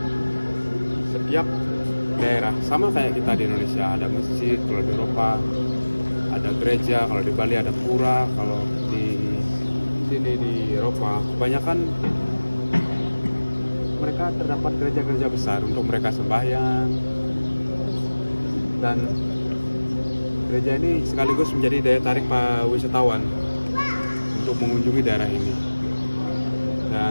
setiap daerah sama kayak kita di Indonesia, ada masjid. Kalau di Eropa ada gereja, kalau di Bali ada pura, kalau di sini di Eropa kebanyakan mereka terdapat gereja-gereja besar untuk mereka sembahyang. Dan gereja ini sekaligus menjadi daya tarik para wisatawan untuk mengunjungi daerah ini.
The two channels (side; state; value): both; inverted; correlation -1.00